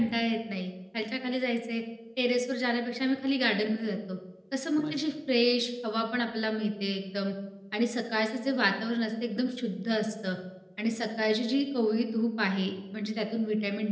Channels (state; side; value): identical; both; correlation 1.00